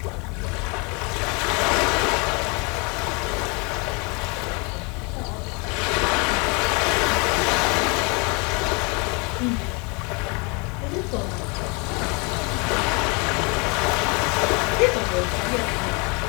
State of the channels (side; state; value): right; quieter; 30.8 dB